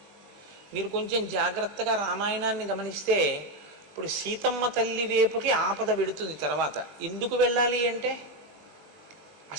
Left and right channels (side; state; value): left; late; 20 ms